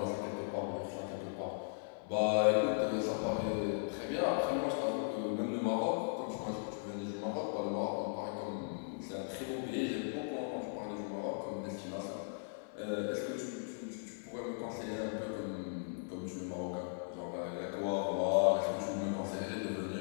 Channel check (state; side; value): silent; right; 53 dB below the other